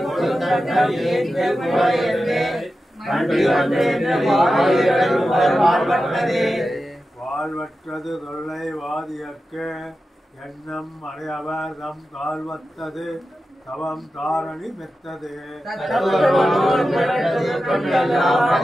வாழ்வற்றது தொல்லை வாதியக்க எண்ணம் அடையவர் தம் கால்வத்தது தவம் தாரணி மெத்தது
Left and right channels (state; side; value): normal; both; correlation 0.92